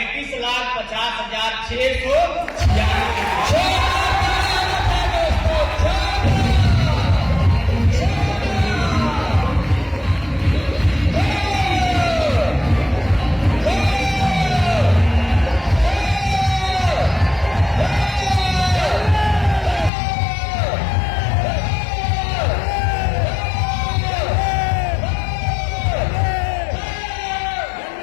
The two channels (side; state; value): right; drops out; at 19.9 s